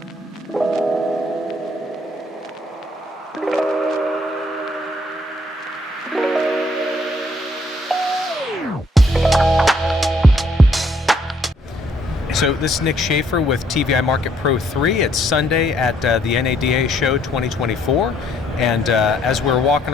this is Nick Shaffer with TVI MarketPro3. It's Sunday at the NADA show 2024. And as we're walking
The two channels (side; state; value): both; normal; correlation 0.67